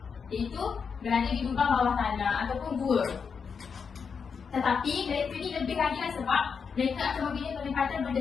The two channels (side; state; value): right; quieter; 6.0 dB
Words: Iaitu berada di lubang bawah tanah ataupun gua. Tetapi mereka ni lebih lagi lah sebab mereka akan membina penempatan